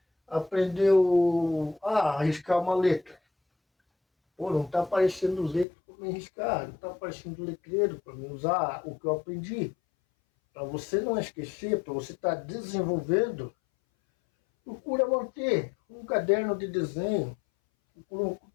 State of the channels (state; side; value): drops out; right; at 5.7 s